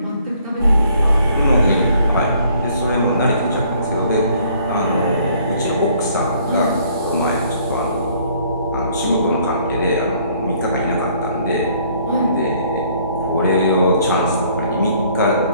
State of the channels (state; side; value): inverted; both; correlation -0.61